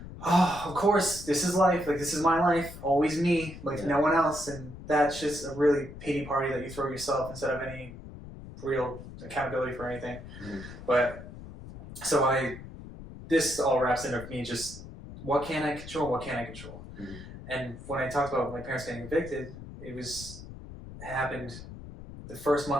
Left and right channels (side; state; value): left; noise; rumble, 13 dB below the sound